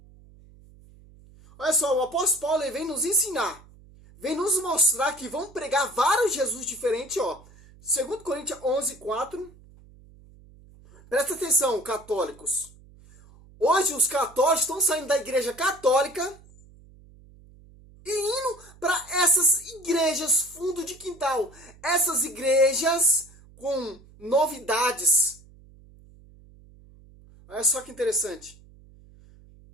Olha só, o apóstolo Paulo ele vem nos ensinar, vem nos mostrar que vão pregar vários Jesus diferentes, ó. 2 Coríntios 11:4. Presta atenção, católicos. Hoje os católicos estão saindo da igreja católica e indo para essas igrejas fundo de quintal. Essas igrejas com novidades. Olha só que interessante.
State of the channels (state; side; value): noise; right; hum, 24 dB below the sound